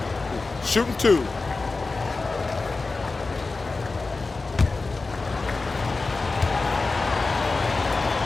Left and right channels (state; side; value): quieter; right; 3.7 dB